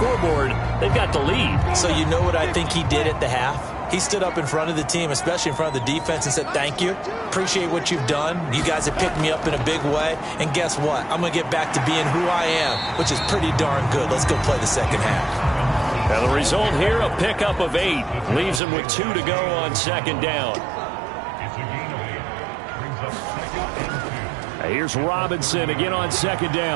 they've got the lead. So you know what I think he did at the half? He stood up in front of the team, especially in front of the defense, and said, thank you. Appreciate what you've done. You guys have picked me up in a big way. And guess what? I'm going to get back to being who I am, which is pretty darn good. Let's go play the second half. Now the result here, a pickup of 8. Leaves him with 2 to go on second down. Here's Robinson again on second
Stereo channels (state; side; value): drops out; left; at 18.6 s